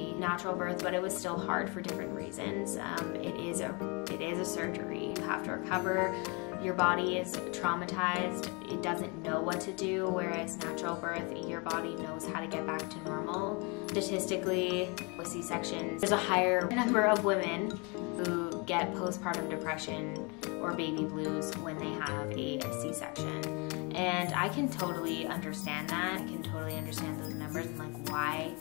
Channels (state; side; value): quieter; right; 30.9 dB